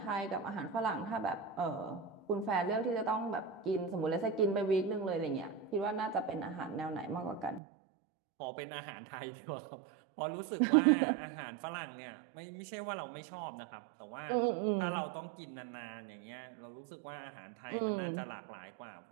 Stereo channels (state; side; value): drops out; left; at 7.6 s